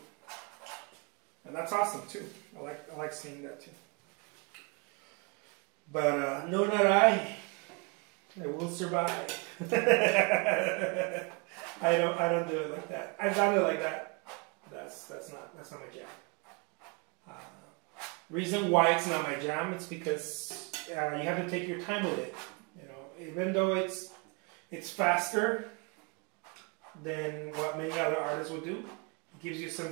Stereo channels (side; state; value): left; quieter; 31.5 dB